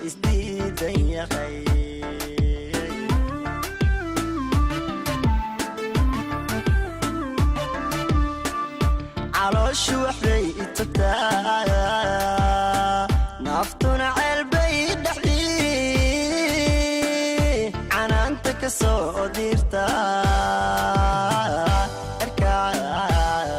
isdiid ya qay calooshu waxbay itubtaa naftuna ceelbay dhexdii canaanta ka soo dirta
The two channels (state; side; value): identical; both; correlation 1.00